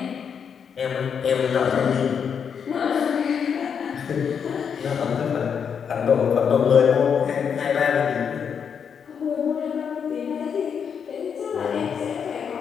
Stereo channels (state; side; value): quieter; right; 7.1 dB